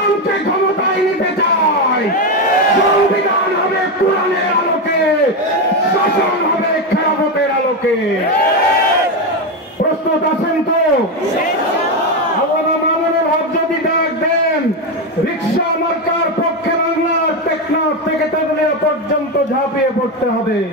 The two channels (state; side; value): normal; both; correlation 0.11